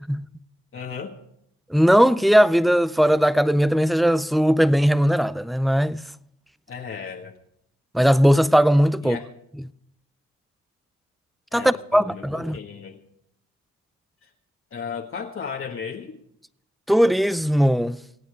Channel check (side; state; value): both; normal; correlation 0.97